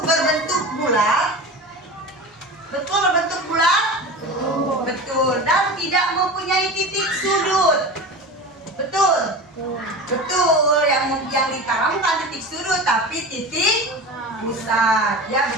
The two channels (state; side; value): normal; both; correlation 0.31